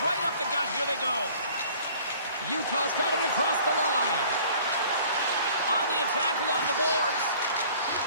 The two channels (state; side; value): inverted; both; correlation -0.51